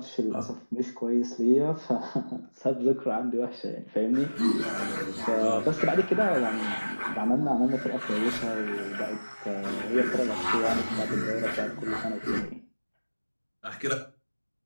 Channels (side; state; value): both; inverted; correlation -1.00